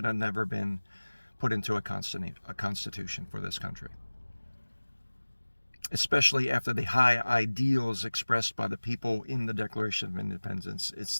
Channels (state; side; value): inverted; both; correlation -1.00